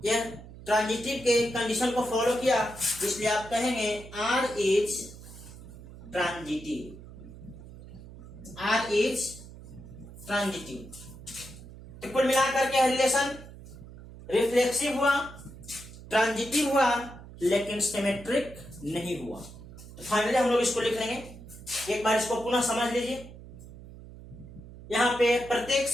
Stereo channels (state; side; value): noise; right; hum, 16 dB below the sound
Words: ट्रांजिटिव के कंडीशन को फॉलो किया, इसलिए आप कहेंगे R is transitive, R is transitive. तो कुल मिलाकर के रिलेशन रिफ्लेक्सिव हुआ, ट्रांजिटिव हुआ, लेकिन सिमेट्रिक नहीं हुआ। तो फाइनली हम लोग इसको लिख लेंगे। एक बार इसको पुनः समझ लीजिए। यहाँ पे प्रत्येक